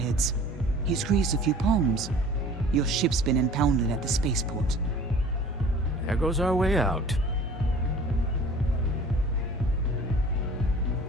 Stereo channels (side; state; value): both; normal; correlation 0.46